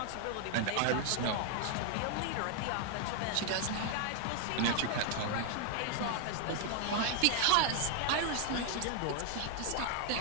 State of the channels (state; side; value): different; both; correlation 0.00